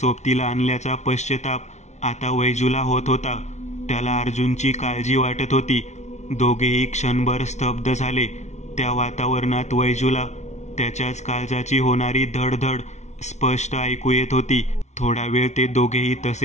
आणल्याचा पश्चाताप आता वैजूला होत होता. त्याला अर्जुनची काळजी वाटत होती. दोघेही क्षणभर स्तब्ध झाले. त्या वातावरणात वैजूला त्याच्याच काळजाची होणारी धडधड स्पष्ट ऐकू येत होती. थोडा वेळ ते दोघेही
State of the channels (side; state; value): right; late; 0.33 ms